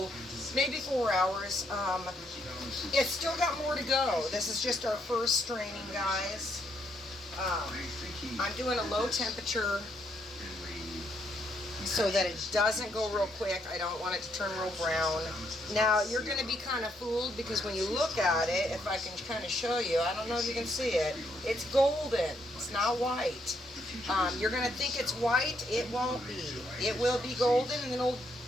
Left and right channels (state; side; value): normal; both; correlation 0.74